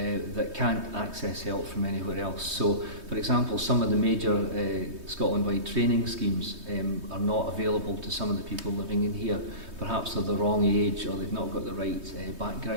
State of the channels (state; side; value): late; left; 3.2 ms